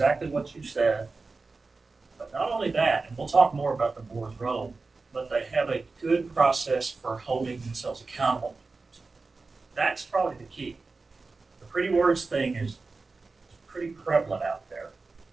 what you said, but not only that, and we'll talk more about the board's role, but they have a good process for holding themselves accountable. That's probably the key. The pretty words thing is pretty prevalent out there,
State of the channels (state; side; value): quieter; left; 3.9 dB